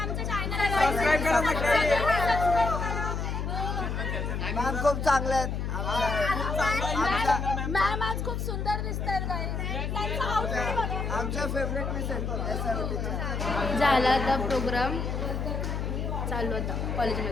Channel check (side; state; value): left; noise; hum, 2 dB below the sound